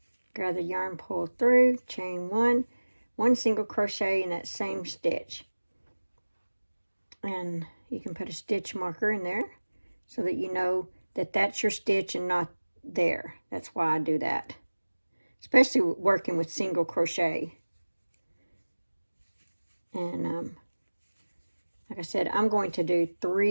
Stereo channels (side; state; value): both; inverted; correlation -1.00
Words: grab the yarn, pull through, chain one single crochet in that same stitch. And you can put a stitch marker in there so that you know that that's your stitch and not there. That's why I do that, especially working with single crochet. And like I said, I'm going to do